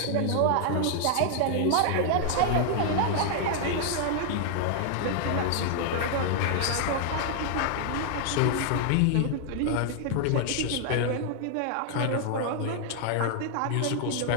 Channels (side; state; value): both; different; correlation 0.00